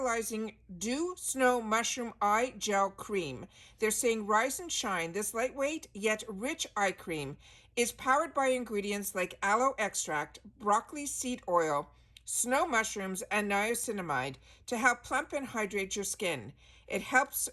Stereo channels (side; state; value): both; identical; correlation 1.00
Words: Dew Snow Mushroom Eye Gel Cream. They're saying rise and shine. This lightweight yet rich eye cream is powered by ingredients like aloe extract, broccoli seed oil, snow mushrooms, and niacinamide to help plump and hydrate your skin. It helps